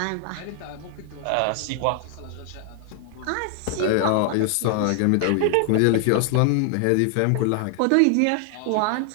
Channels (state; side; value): different; both; correlation 0.00